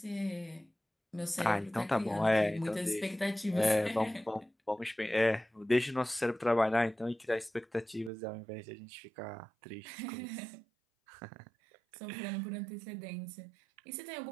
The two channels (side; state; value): left; drops out; at 8.1 s